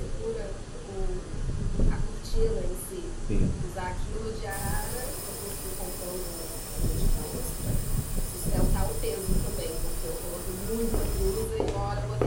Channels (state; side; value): identical; both; correlation 1.00